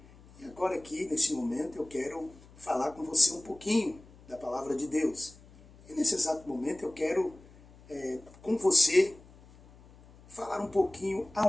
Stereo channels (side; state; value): left; noise; hum, 23 dB below the sound